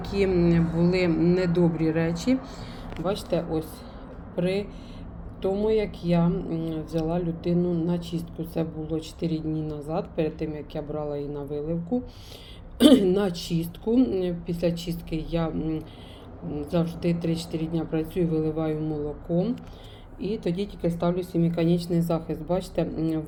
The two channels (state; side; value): identical; both; correlation 1.00